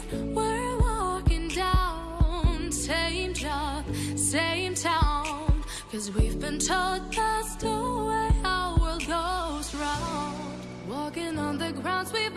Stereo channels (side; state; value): both; identical; correlation 1.00